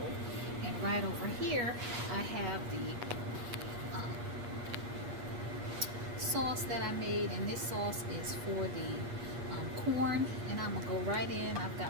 And right over here I have the sauce that I made, and this sauce is for the corn, and I'm gonna go right in. I've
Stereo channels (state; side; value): late; left; 8.4 ms